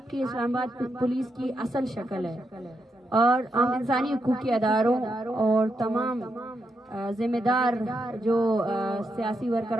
इस्लामाबाद पुलिस की असल शक्ल है, और हम इंसानी हुकूक के अदारों और तमाम जिम्मेदार जो सियासी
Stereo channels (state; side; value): normal; both; correlation 0.83